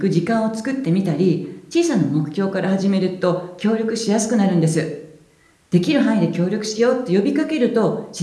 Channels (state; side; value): identical; both; correlation 1.00